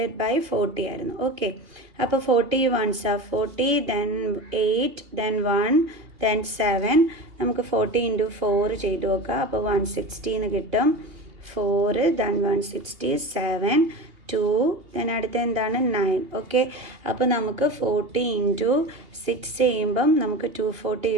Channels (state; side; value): late; left; 2.8 ms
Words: ബൈ 40 ആയിരുന്നു. ഓക്കെ, അപ്പോൾ 40 1s are 40, then 8, then 1, then 7. നമുക്ക് 40 into 4 ചെയ്ത് നോക്കാം. അപ്പോൾ 160 എന്ന് കിട്ടും. 4, ദെൻ 167, 2, ദെൻ അടുത്ത എന്താണ്? 9. ഓക്കെ, അപ്പോൾ നമുക്ക് 40 into 6 ചെയ്യുമ്പം നമുക്ക് 240